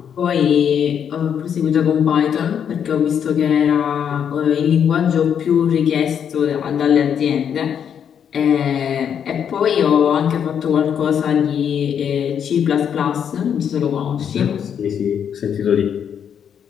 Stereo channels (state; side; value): quieter; right; 8.2 dB